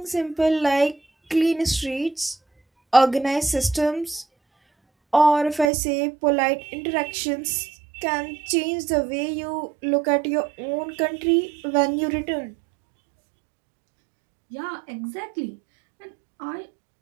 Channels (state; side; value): drops out; left; at 5.7 s